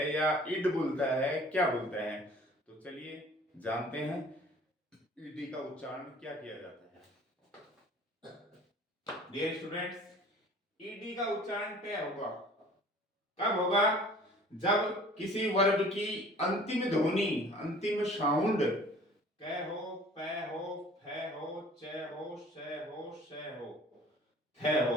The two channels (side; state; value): both; normal; correlation 0.49